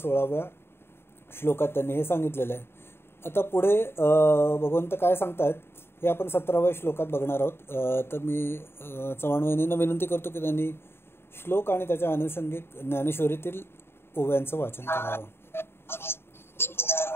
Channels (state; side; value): late; right; 0.11 ms